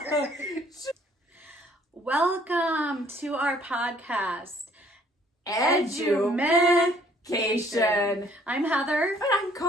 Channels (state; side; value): normal; both; correlation 0.60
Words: Welcome to our podcast, Edu-MEH-cation. I'm Heather. And I'm